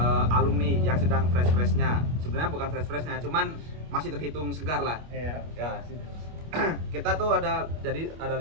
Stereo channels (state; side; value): late; left; 26 ms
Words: alumni yang sedang fresh-freshnya. Sebenarnya bukan fresh-freshnya, cuman masih terhitung segar lah. Iya. Ya. Kita tuh ada